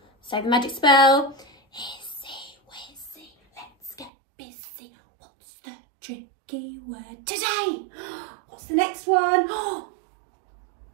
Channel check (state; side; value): drops out; left; at 4.1 s